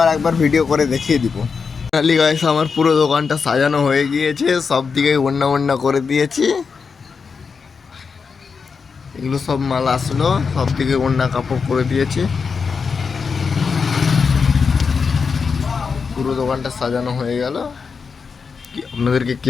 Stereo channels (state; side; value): quieter; right; 5.4 dB